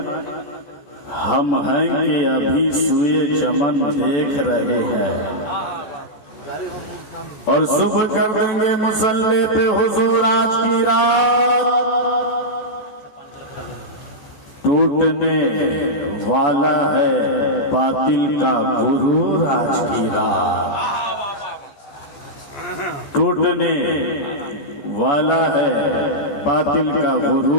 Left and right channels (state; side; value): late; right; 14 ms